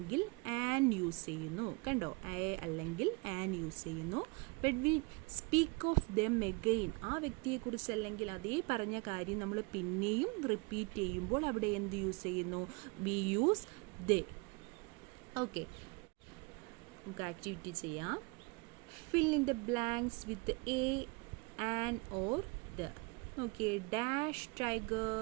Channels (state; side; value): quieter; left; 28.0 dB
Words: ആൻ യൂസ് ചെയ്യുന്നു. കണ്ടോ? എ അല്ലെങ്കിൽ ആൻ യൂസ് ചെയ്യുന്നു. But we speak of them again. ആ വ്യക്തിയെക്കുറിച്ച് അല്ലെങ്കിൽ അതേ പറഞ്ഞ കാര്യം നമ്മൾ പിന്നെയും റിപ്പീറ്റ് ചെയ്യുമ്പോൾ അവിടെ എന്ത് യൂസ് ചെയ്യുന്നു? We use they. ഓക്കെ. നമുക്ക് ആക്ടിവിറ്റി ചെയ്യാം. Fill in the blanks with a, an or the. Okay. Dash tiger